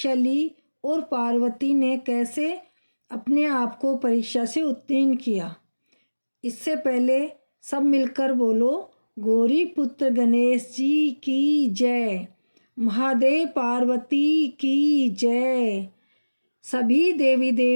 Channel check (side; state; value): both; inverted; correlation -1.00